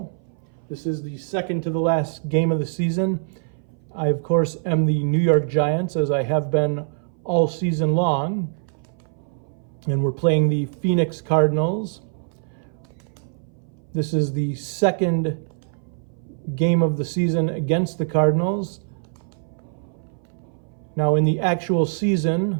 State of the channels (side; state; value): left; silent; 59 dB below the other